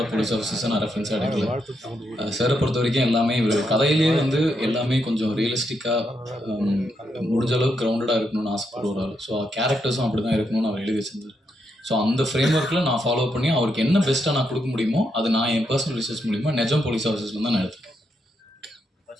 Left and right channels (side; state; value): both; normal; correlation 0.80